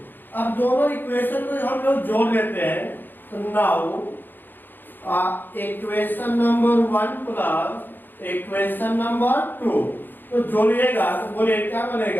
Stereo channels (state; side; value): late; right; 0.092 ms